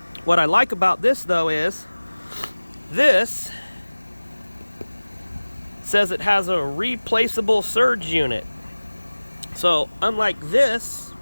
What I like about this though is this says it has a replaceable surge unit. So unlike this,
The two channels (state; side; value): inverted; both; correlation -1.00